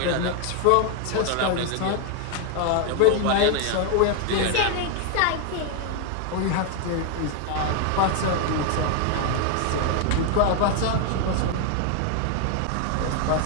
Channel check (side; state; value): both; different; correlation 0.01